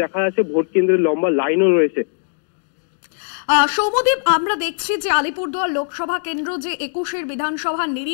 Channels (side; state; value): right; silent; digital silence